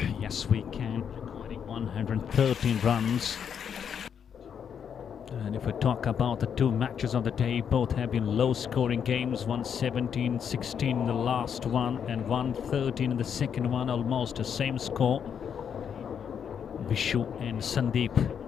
Yes We Can recording 113 runs. And if we talk about the two matches of the day, both have been low scoring games. 117-16 in the last one and 113 in the second one, almost the same score. Vishu and Sandeep,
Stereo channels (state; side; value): quieter; right; 7.7 dB